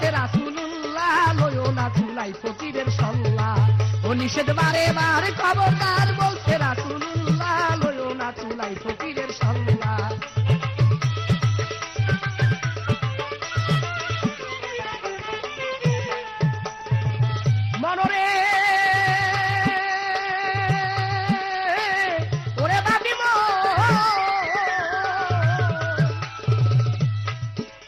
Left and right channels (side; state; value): both; identical; correlation 1.00